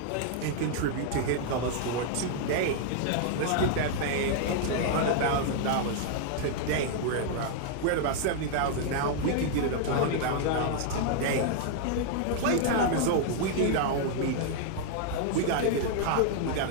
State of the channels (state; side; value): different; both; correlation 0.00